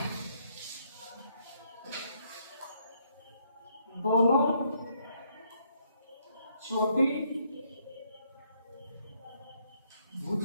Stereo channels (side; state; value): both; inverted; correlation -0.71